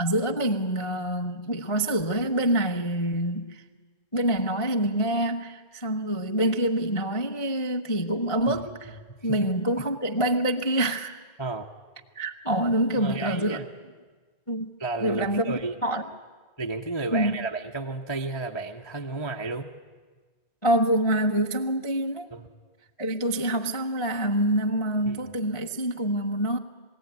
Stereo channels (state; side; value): late; right; 1.5 ms